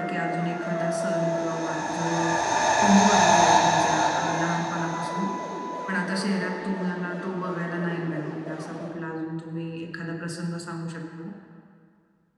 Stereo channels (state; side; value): identical; both; correlation 1.00